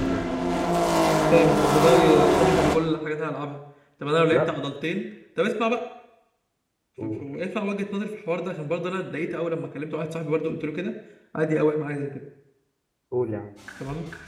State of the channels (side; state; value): both; identical; correlation 1.00